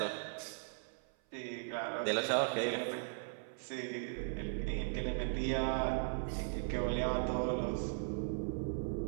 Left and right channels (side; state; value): left; silent; 52 dB below the other